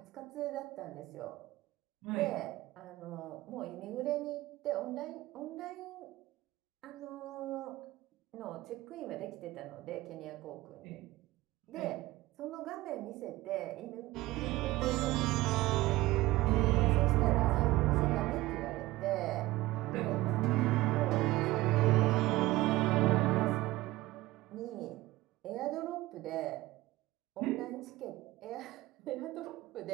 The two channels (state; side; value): quieter; left; 18.4 dB